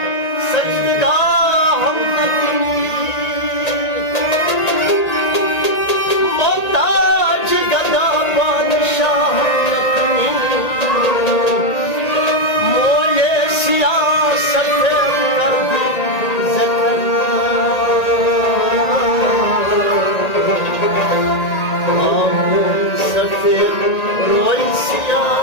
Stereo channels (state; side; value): late; right; 1.8 ms